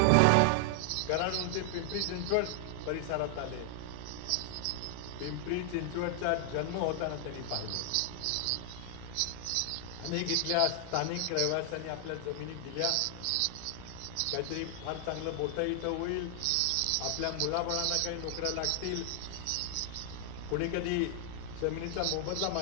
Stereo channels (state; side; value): different; both; correlation 0.00